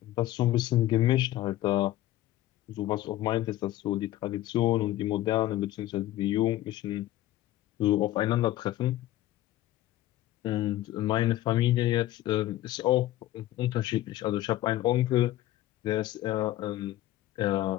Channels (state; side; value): quieter; right; 14.7 dB